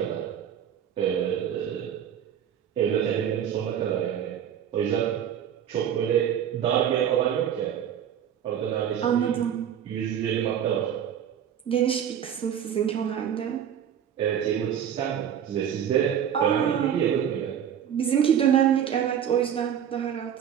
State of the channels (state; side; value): quieter; left; 9.2 dB